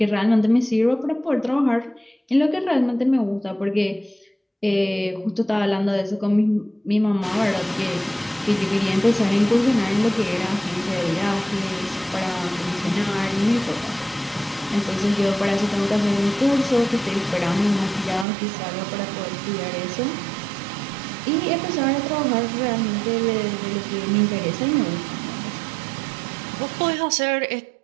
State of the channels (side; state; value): left; drops out; at 18.2 s